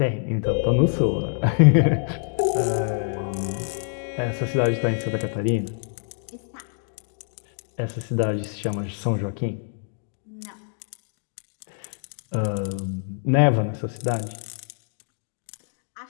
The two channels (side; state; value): right; silent; digital silence